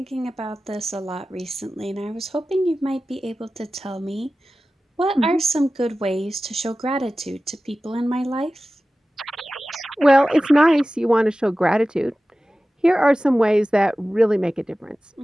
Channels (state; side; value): normal; both; correlation 0.95